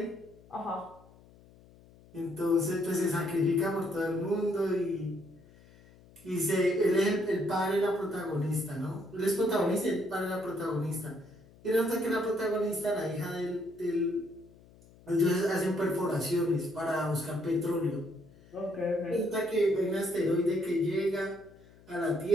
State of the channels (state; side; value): noise; left; hum, 25 dB below the sound